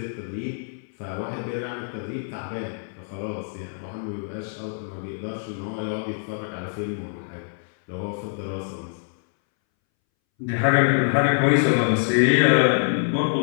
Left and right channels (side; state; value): right; silent; 62 dB below the other